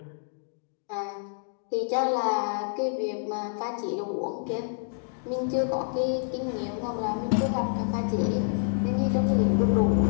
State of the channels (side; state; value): right; silent; digital silence